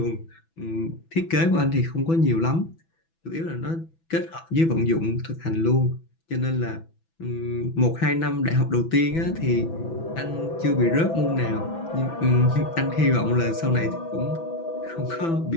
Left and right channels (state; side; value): late; right; 6.0 ms